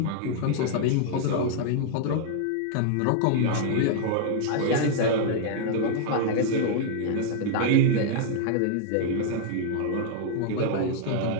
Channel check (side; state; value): both; different; correlation -0.01